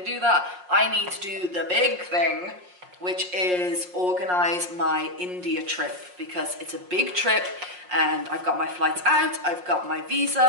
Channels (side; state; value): left; late; 5.6 ms